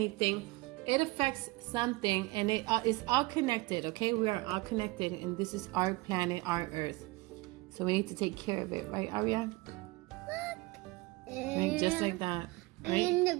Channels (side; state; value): left; quieter; 22.7 dB